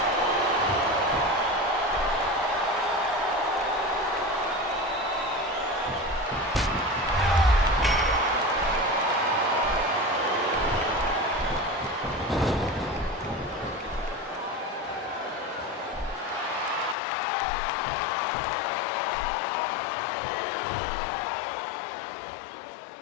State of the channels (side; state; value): right; drops out; at 16.9 s